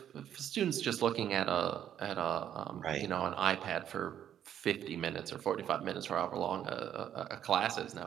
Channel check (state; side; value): quieter; left; 10.1 dB